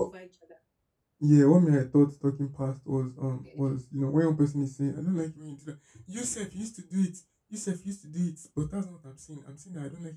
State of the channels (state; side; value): identical; both; correlation 1.00